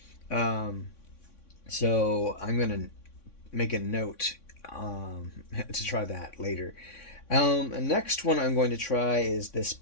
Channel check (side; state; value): right; late; 3.6 ms